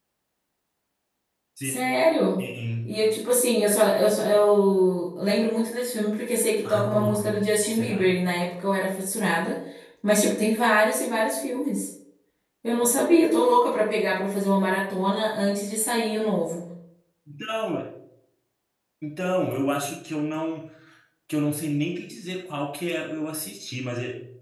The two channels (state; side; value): identical; both; correlation 1.00